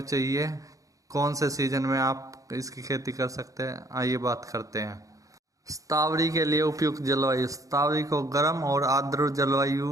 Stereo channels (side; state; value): left; late; 0.16 ms